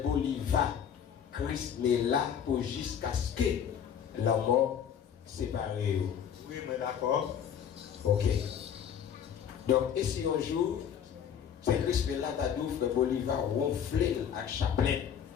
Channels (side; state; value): right; quieter; 8.5 dB